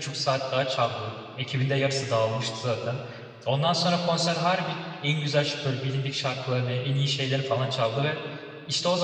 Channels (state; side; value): identical; both; correlation 1.00